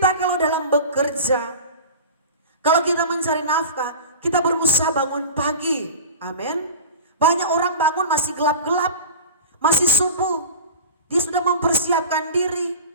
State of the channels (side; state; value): both; inverted; correlation -0.34